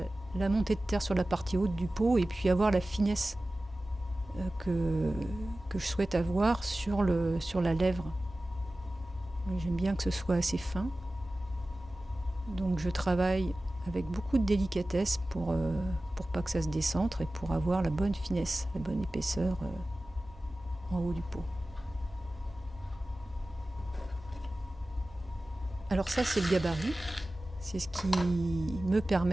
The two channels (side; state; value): both; normal; correlation 0.96